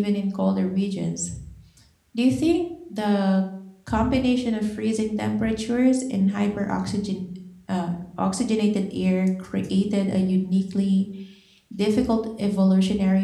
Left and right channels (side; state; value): both; identical; correlation 1.00